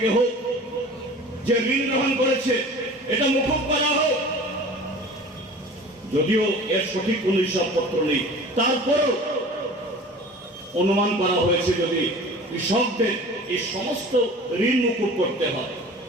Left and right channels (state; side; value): normal; both; correlation 0.41